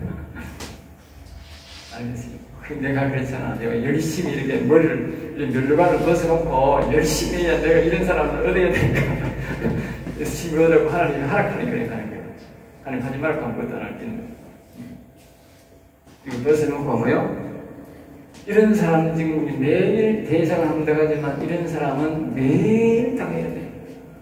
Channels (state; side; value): identical; both; correlation 1.00